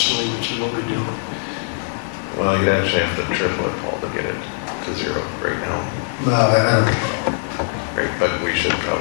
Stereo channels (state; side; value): silent; right; digital silence